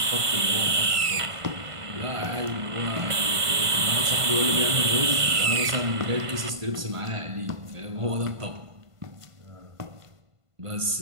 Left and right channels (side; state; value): left; late; 1.5 ms